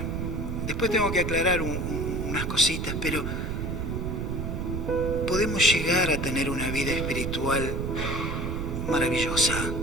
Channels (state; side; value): noise; right; rumble, 2 dB below the sound